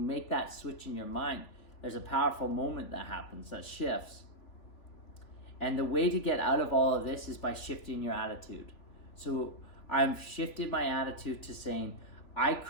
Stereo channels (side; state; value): right; late; 3.5 ms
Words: make that switch in your mind, there's a powerful moment that happens, that shifts. And the way to get out of all of this is by shifting your attitude. So I've shifted my attitude to saying, I